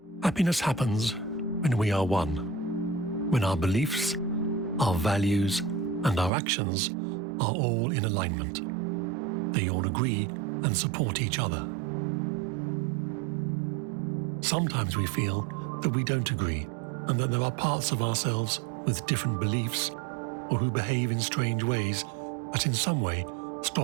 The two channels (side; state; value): left; drops out; at 6.3 s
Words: Happiness happens when we are one, when our beliefs, our values, and our actions are all in alignment. They all agree and support each other. Sometimes we feel that we don't agree and that there are parts of ourselves with different beliefs or who behave in strange ways that in some way